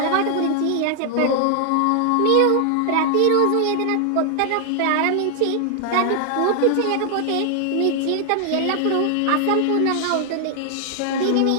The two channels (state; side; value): different; both; correlation 0.00